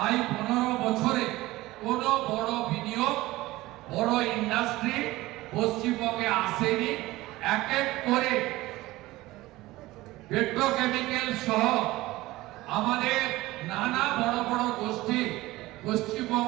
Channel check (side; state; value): left; quieter; 18.4 dB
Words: 15 বছরে কোনো বড় বিনিয়োগ, বড় ইন্ডাস্ট্রি পশ্চিমবঙ্গে আসেনি। এক এক করে পেট্রোকেমিক্যাল সহ আমাদের নানা বড় বড় গোষ্ঠী